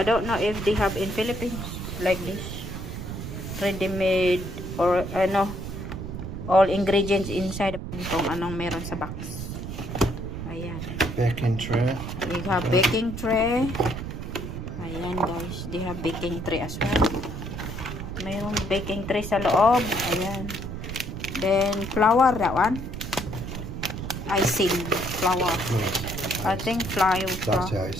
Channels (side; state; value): right; noise; rumble, 7 dB below the sound